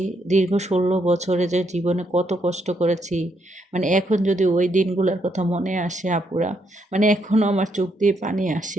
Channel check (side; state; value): both; normal; correlation 0.76